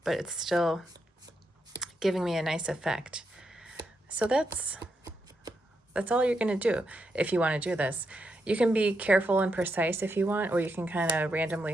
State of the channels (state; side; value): normal; both; correlation 0.82